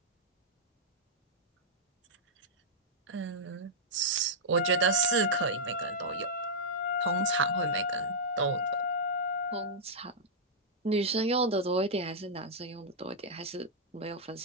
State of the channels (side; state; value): both; normal; correlation -0.09